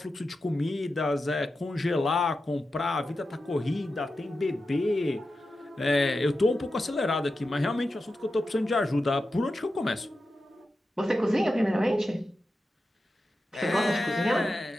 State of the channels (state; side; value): normal; both; correlation 0.91